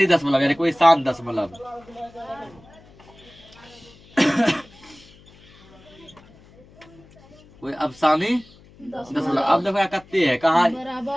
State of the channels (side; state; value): left; noise; hum, 25 dB below the sound